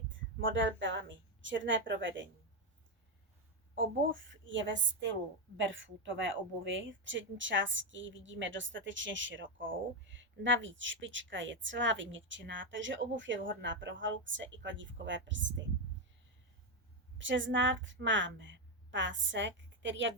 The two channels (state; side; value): normal; both; correlation 0.06